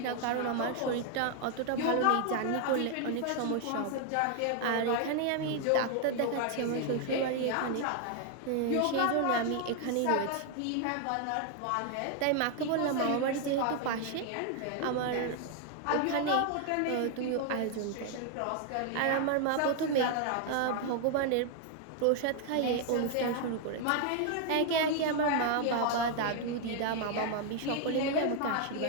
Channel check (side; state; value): both; different; correlation 0.00